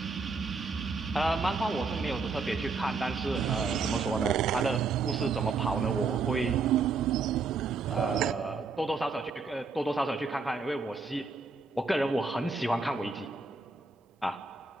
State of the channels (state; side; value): quieter; left; 4.3 dB